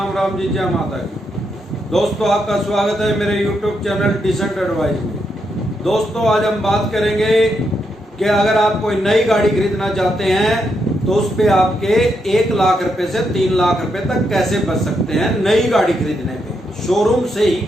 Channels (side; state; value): both; normal; correlation 0.81